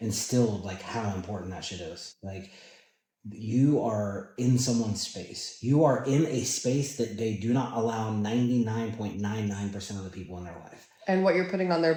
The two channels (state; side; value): identical; both; correlation 1.00